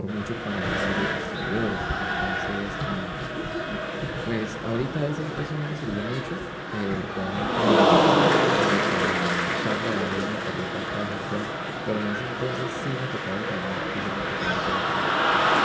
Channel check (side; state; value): both; identical; correlation 1.00